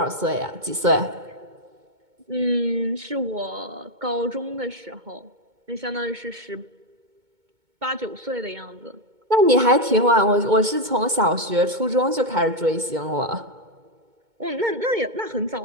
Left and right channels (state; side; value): late; left; 2.2 ms